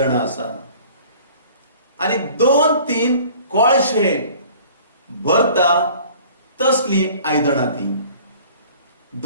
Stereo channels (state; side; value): inverted; both; correlation -0.49